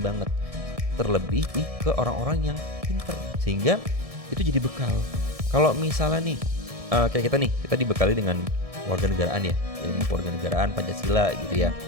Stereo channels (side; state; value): left; late; 1.7 ms